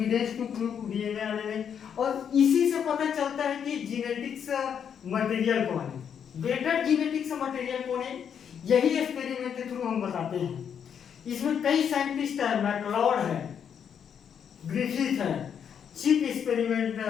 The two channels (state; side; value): quieter; right; 7.9 dB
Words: to prove DNA RNA. और इसी से पता चलता है कि जेनेटिक्स मटेरियल कौन है, बेटर जेनेटिक्स मटेरियल कौन है, यही एक्सपेरिमेंट के थ्रू हम बताते हैं। इसमें कई साइंटिस्ट है, मैकलॉड है, ग्रिफिथ है, चिप एक्सपेरिमेंट